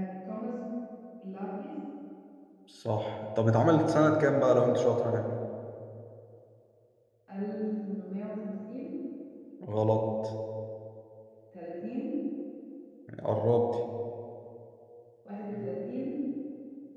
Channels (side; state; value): both; identical; correlation 1.00